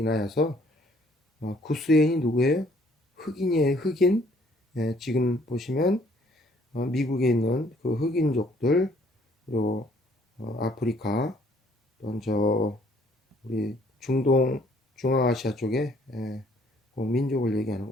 구스 여인이 누구예요? 흑인이에요. 흑인. 지금 보시면 미국에 있는 그 흑인족들, 그리고 아프리카, 또는 우리 중동 중앙아시아 쪽에 그 민족을 얘기하는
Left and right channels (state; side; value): normal; both; correlation 0.62